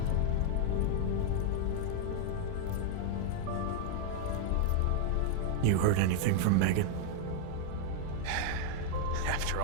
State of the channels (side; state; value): both; different; correlation 0.00